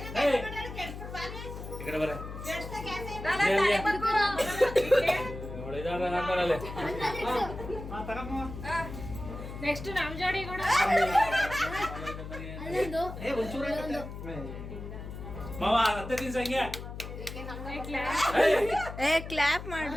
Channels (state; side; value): noise; left; hum, 10 dB below the sound